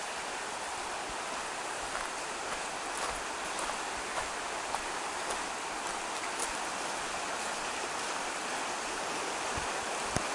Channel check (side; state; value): both; identical; correlation 1.00